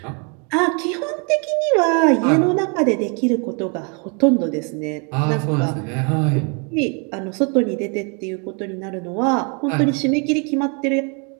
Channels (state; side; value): quieter; left; 35.7 dB